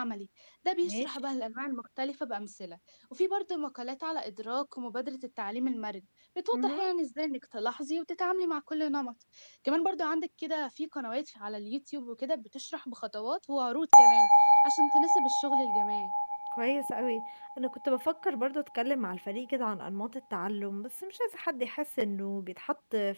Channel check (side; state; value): both; inverted; correlation -1.00